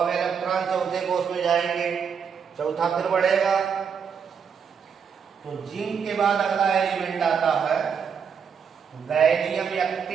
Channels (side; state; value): left; quieter; 6.8 dB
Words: इलेक्ट्रॉन चौथे कोष में जाएंगे, चौथा फिर बढ़ेगा। तो जिंक के बाद अगला एलिमेंट आता है गैलियम